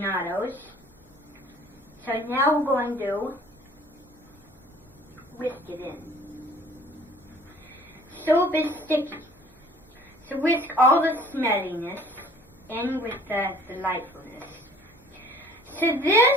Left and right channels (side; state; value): both; normal; correlation 0.52